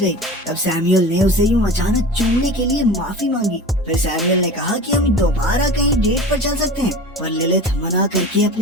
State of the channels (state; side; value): normal; both; correlation 0.35